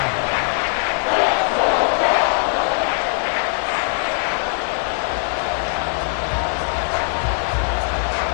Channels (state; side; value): silent; right; 61 dB below the other